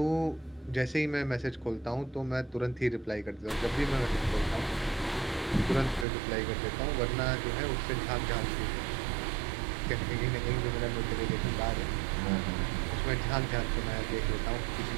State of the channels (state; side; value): drops out; left; at 6.1 s